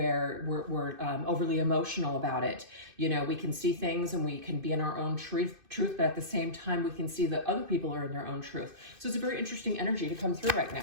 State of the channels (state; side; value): late; left; 2.5 ms